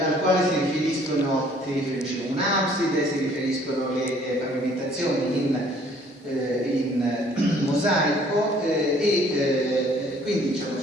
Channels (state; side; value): normal; both; correlation 0.58